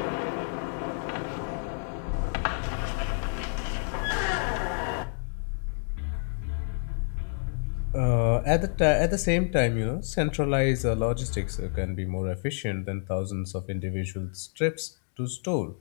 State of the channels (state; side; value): silent; right; 59 dB below the other